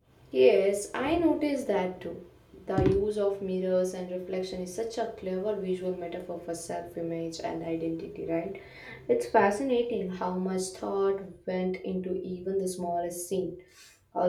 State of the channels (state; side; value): identical; both; correlation 1.00